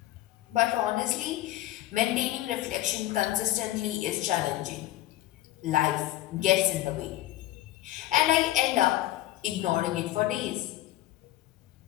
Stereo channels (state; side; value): quieter; right; 15.5 dB